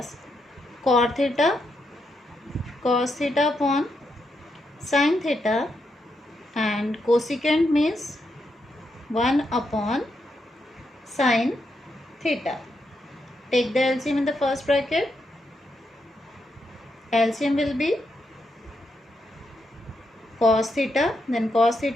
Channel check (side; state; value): both; normal; correlation 0.82